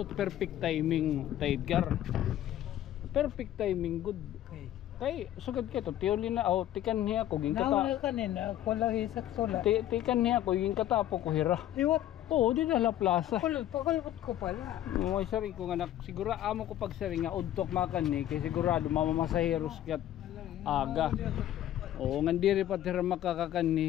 perfect timing Tay Edgar. Perfect timing good. Okay. Kay sugad ka to tiuli na tikan niya ko ging Nauna kata. kanina, ako lang isak sula. Tikan niya ko ging katapo ko hira. Iwat, Oo, di na la plaza. pakulot ko pala. May sari ko nga siguro amo ko pag sari nga udtok makan ni kay sigurado mamamasaheros kat aga. Oo, nga diri pa tira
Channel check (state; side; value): quieter; right; 12.5 dB